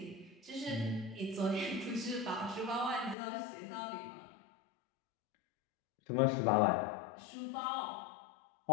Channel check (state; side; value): drops out; right; at 3.2 s